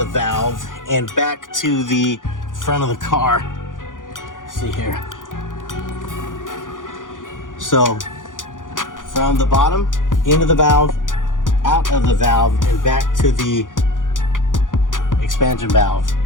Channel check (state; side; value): late; right; 0.88 ms